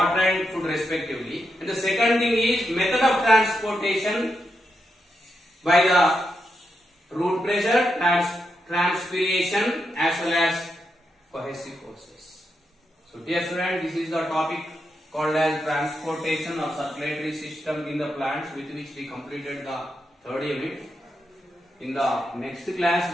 and food respectively. And the second thing is method of transportation by the root pressure, transpiration as well as cohesive forces. So dear student, this is the topic called as transportation of circulatory system in the plants, with which we completed the third unit. In the next class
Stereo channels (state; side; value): normal; both; correlation 0.84